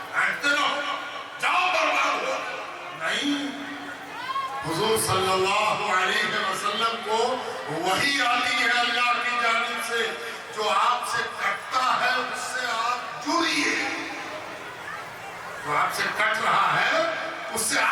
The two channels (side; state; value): both; identical; correlation 1.00